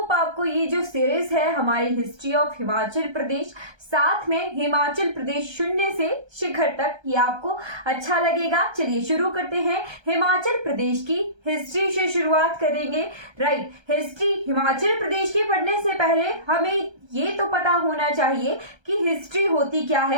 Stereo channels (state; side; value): late; left; 1.3 ms